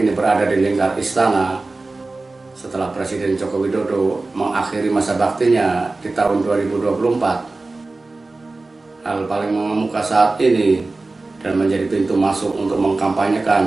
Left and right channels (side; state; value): left; quieter; 3.3 dB